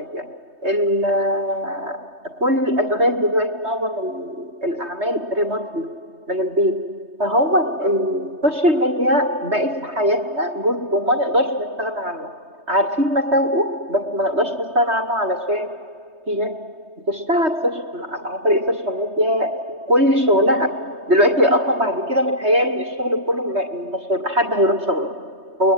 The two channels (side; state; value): left; late; 3.2 ms